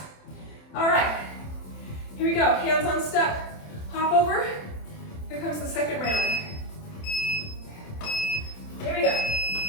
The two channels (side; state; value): right; late; 27 ms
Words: All right, here we go. Hands on step, hop over. Here comes the second round. Here we go.